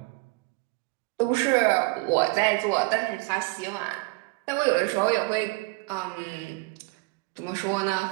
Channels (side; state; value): left; quieter; 25.3 dB